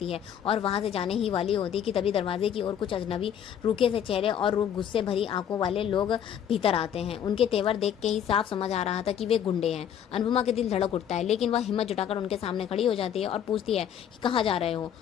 है और वहां से जाने ही वाली होती कि तभी दरवाजे की ओर कुछ अजनबी रूखे से चेहरे और गुस्से भरी आंखों वाले लोग भीतर आते हैं। उनके तेवर देख के ही साफ समझ आ रहा था कि वे गुंडे हैं। अनुपमा के दिल धड़क उठता है, लेकिन वह हिम्मत जुटाकर उनके सामने खड़ी हो जाती है और पूछती है कि कहाँ जा रहे हो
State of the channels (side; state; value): right; quieter; 9.2 dB